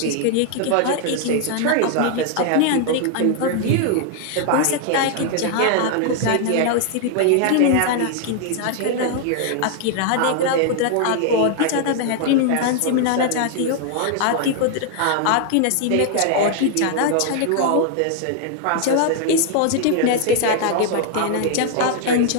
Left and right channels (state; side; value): different; both; correlation 0.00